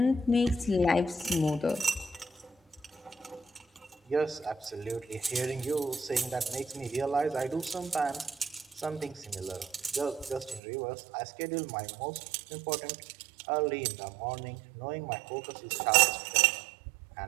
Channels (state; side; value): drops out; left; at 10.6 s